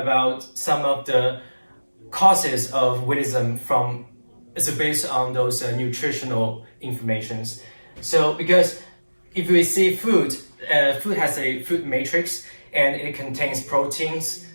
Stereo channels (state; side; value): inverted; both; correlation -1.00